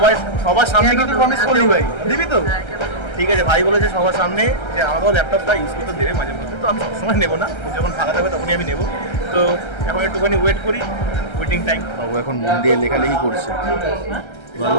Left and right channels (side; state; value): right; late; 1.3 ms